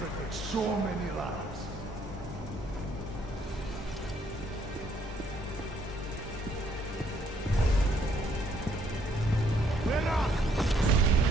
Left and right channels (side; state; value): both; normal; correlation 0.67